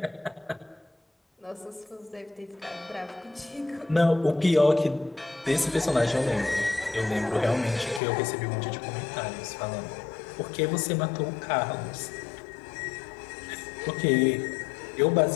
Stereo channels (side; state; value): right; drops out; at 8.0 s